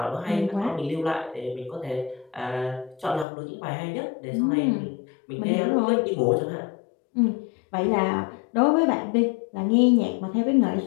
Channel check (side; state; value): right; drops out; at 3.2 s